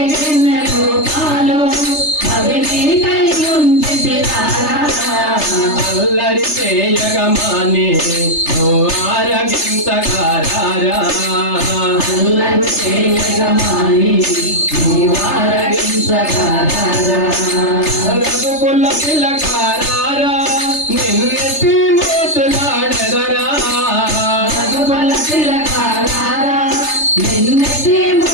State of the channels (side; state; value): right; late; 3.3 ms